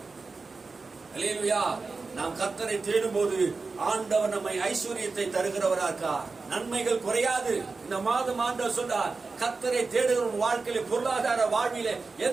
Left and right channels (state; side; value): quieter; left; 4.1 dB